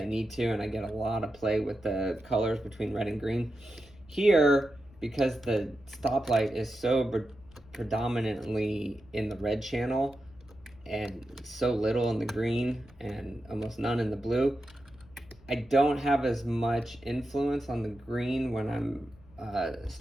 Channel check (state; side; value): noise; left; rumble, 25 dB below the sound